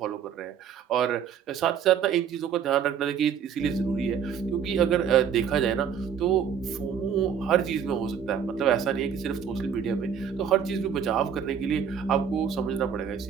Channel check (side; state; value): left; quieter; 7.8 dB